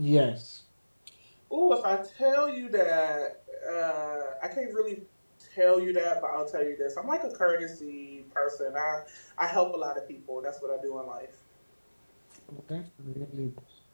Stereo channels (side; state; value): both; inverted; correlation -1.00